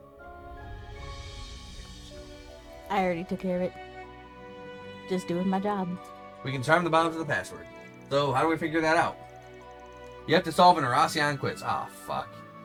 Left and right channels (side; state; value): both; identical; correlation 1.00